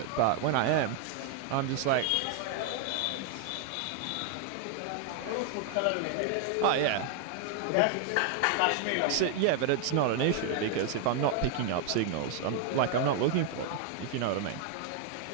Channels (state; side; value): different; both; correlation 0.00